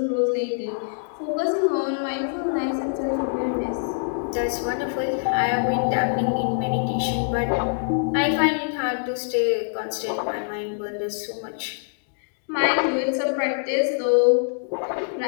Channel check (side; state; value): right; silent; digital silence